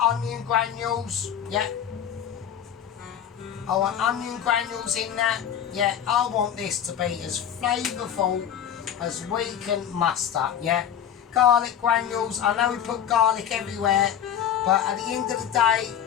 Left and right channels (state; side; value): quieter; right; 9.4 dB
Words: onion granules, yeah. I want onion granules in that, yeah. I want this to be as flavourful as we can muster, yeah. Garlic granules, I know we put garlic everywhere, but at the end of the day,